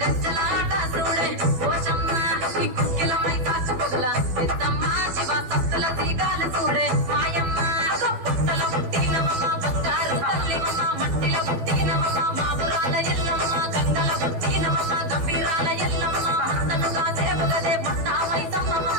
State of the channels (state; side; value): late; left; 12 ms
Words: గజ్జలాట చూడే ఓషమ్మ ఈ కుక్కిలమై కాచు పొగల పెద్దమ్మ శివ సత్తుల తీగాలు చూడే మాయమ్మ పుట్టల పుట్టినమ్మ బంగారు తల్లివమ్మ మట్టిల పుట్టినమ్మ మాబురాల ఎల్లమ్మ గంగల పుట్టినమ్మ గంభీరాల ఎల్లమ్మ మందనుగా దేవుగదే మొండామై సమ్మమ్మ